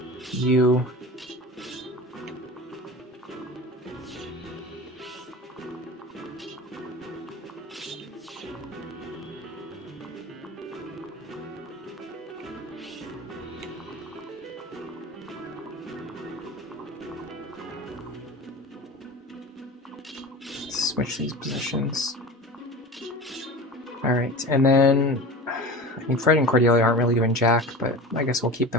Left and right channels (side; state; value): both; normal; correlation 0.33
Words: you, switch these positions. Alright, and then I mean, Fred and Cordelia aren't really doing jack, but I guess we'll keep